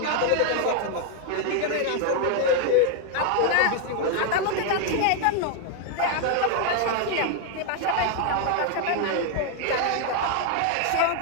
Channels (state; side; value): different; both; correlation 0.00